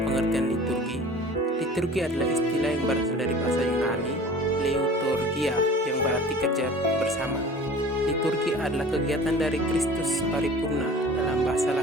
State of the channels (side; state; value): both; normal; correlation 0.43